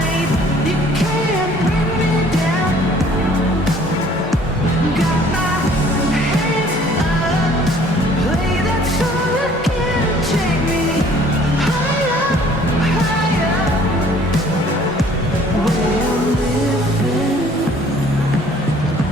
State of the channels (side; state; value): both; normal; correlation 0.56